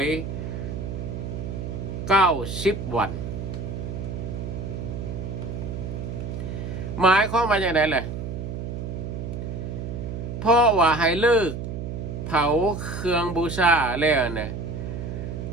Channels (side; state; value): right; noise; hum, 6 dB below the sound